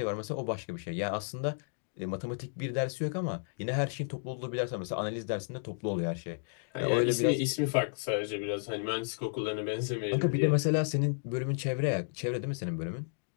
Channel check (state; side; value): silent; right; digital silence